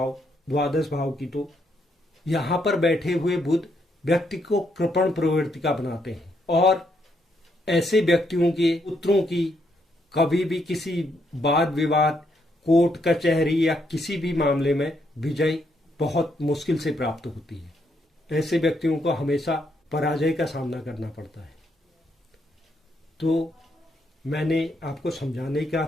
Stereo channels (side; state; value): both; normal; correlation 0.76